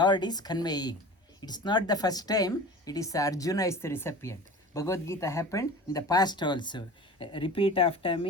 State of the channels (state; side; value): normal; both; correlation 0.37